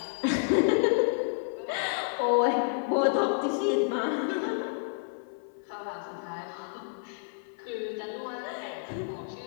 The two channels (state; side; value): silent; right; 58 dB below the other